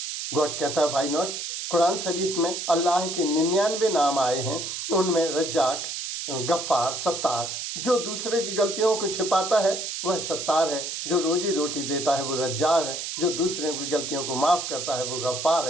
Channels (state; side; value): noise; right; hiss, 5 dB below the sound